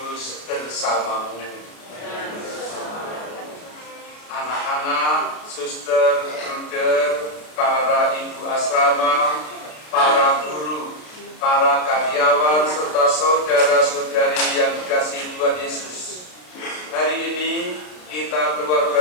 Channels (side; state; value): right; late; 33 ms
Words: bersamamu. Anak-anak, suster, bruder, para ibu asrama, para guru, para karyawan serta saudara-saudari yang dikasihi Tuhan Yesus. Hari ini kita